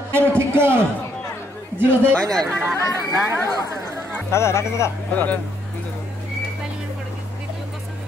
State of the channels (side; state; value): both; normal; correlation 0.71